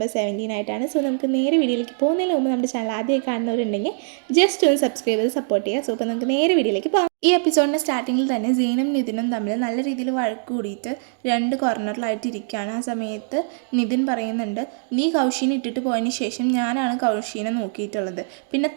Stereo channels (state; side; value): silent; left; digital silence